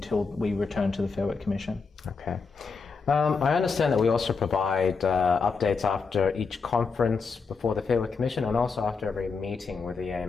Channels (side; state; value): right; quieter; 4.9 dB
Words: we return to the Fair Work Commission. Okay. I understand that we also provide updates after each conference before the Fair Work Commission and also after every meeting with the